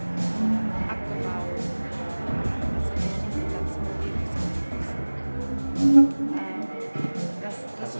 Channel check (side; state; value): both; inverted; correlation -1.00